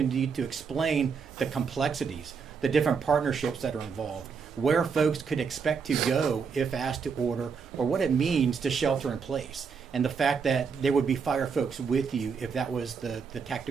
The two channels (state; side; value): quieter; left; 5.8 dB